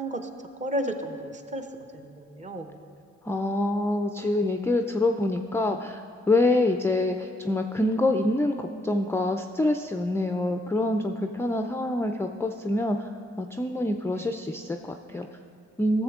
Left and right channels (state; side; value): normal; both; correlation 0.74